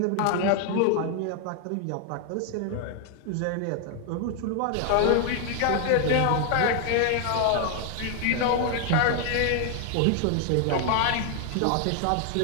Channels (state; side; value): different; both; correlation 0.00